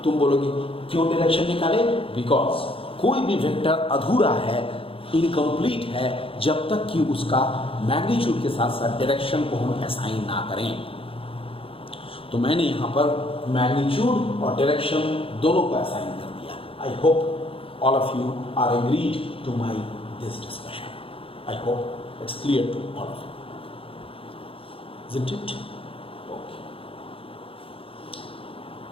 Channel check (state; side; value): late; right; 0.27 ms